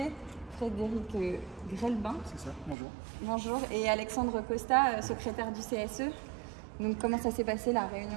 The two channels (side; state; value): left; drops out; at 2.8 s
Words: Frédéric Grelbin. C'est ça, bonjour. Bonjour, et Alexandre Costa, secrétaire du CSE. Donc comment ça s'est passé la